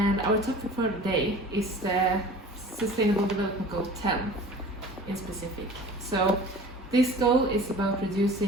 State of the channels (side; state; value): both; normal; correlation 0.42